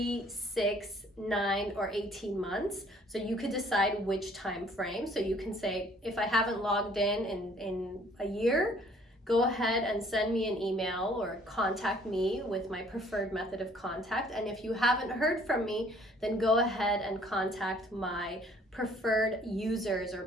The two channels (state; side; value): normal; both; correlation 0.59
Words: 6, 9, or 18 months. So you could decide which time frame. So you can say, if I haven't logged in a year, go ahead and send me an email or contact me with my preferred method of contact. And if you haven't heard from me, then go ahead and contact my preferred users or